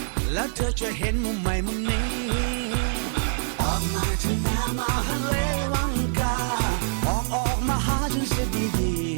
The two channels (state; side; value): silent; left; digital silence